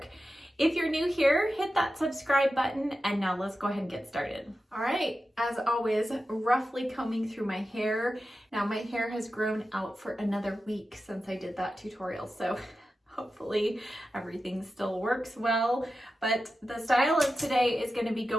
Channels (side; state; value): both; normal; correlation 0.92